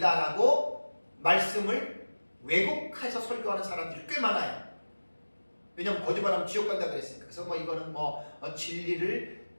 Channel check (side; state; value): both; inverted; correlation -1.00